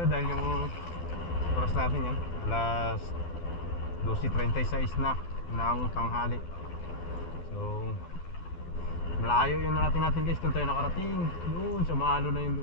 dahil yung oras natin yan alas 12:36 na ng tanghali. So malayo yung natin guys kung tayo nakarating. Doon sa maalo na yun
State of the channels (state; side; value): late; right; 12 ms